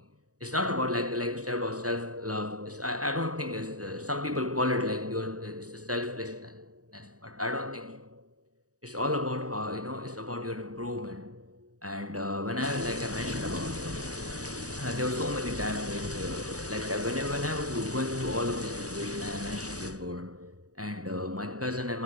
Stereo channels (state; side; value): late; left; 0.66 ms